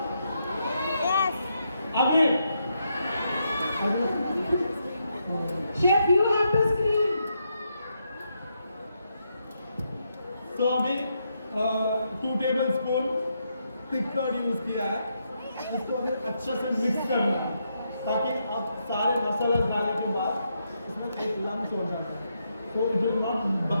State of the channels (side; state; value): both; inverted; correlation -0.80